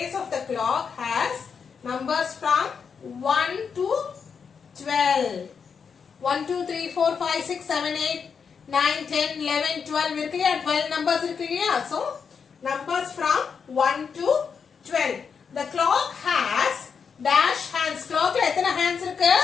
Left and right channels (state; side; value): quieter; right; 6.2 dB